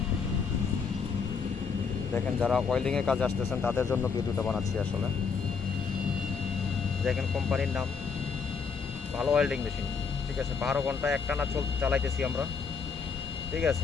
দেখেন যারা ওয়েল্ডিংয়ের কাজে আসতেছেন তাদের জন্য ভিডিওটা বানাচ্ছি আসলে। দেখেন কোম্পানির নাম ভালো ওয়েল্ডিং মেশিন, ঠিক আছে। 12 ঘন্টা একটানা চালাইতেছি আমরা, ঠিক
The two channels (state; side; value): quieter; right; 5.6 dB